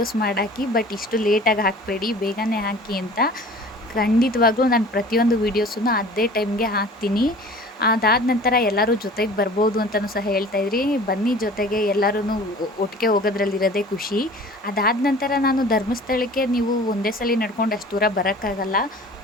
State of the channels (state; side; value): normal; both; correlation 0.44